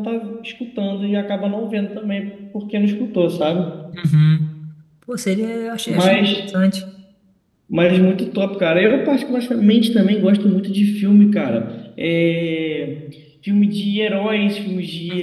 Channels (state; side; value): identical; both; correlation 1.00